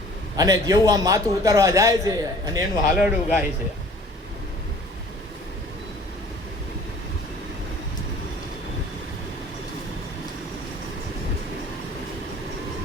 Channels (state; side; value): normal; both; correlation 0.50